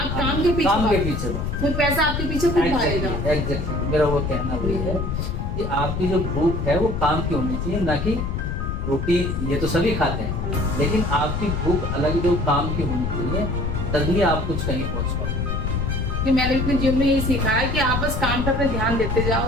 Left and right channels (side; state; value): left; noise; rumble, 2 dB below the sound